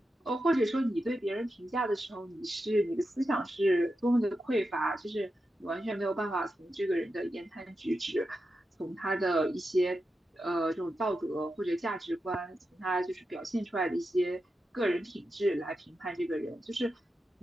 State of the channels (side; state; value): both; normal; correlation 0.89